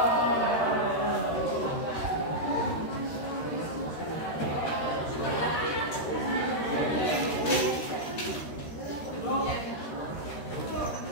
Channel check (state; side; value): late; right; 13 ms